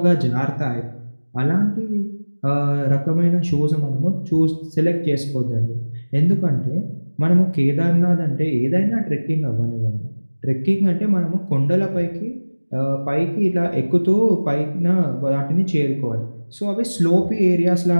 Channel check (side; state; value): both; inverted; correlation -1.00